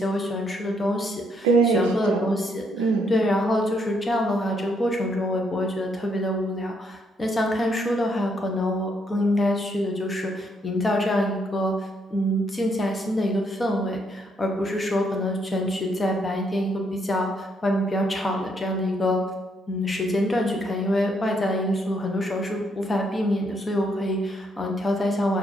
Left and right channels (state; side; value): normal; both; correlation 0.73